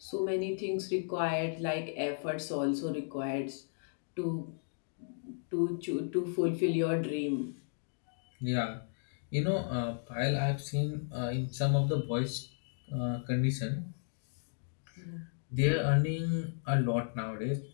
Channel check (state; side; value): silent; right; digital silence